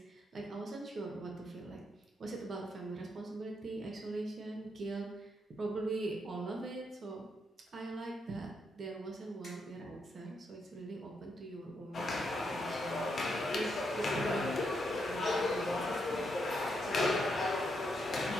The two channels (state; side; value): normal; both; correlation 0.79